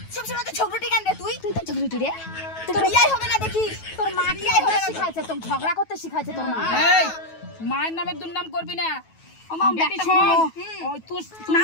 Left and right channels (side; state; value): right; late; 9.2 ms